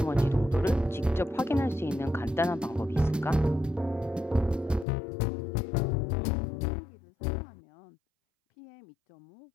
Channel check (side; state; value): right; drops out; at 4.9 s